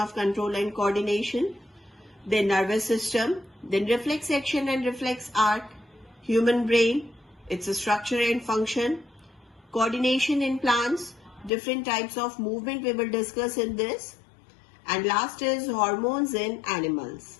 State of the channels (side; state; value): right; drops out; at 11.5 s